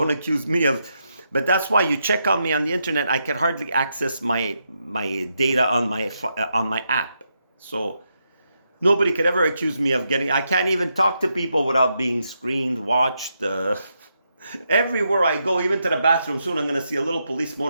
accuse me of. But that's why you check on me on the internet. I can hardly access my data on my app. So nobody could ever accuse me of I can't even talk to people without being screened, watched. Everywhere I go, even to the bathroom, soon I'm going to see a little police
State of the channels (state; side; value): inverted; both; correlation -0.82